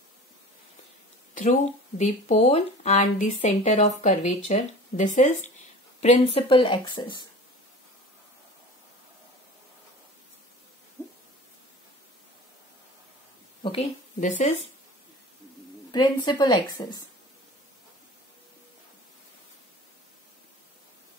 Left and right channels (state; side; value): normal; both; correlation 0.39